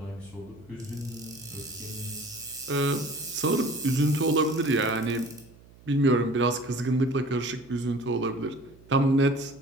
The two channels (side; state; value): right; noise; hum, 24 dB below the sound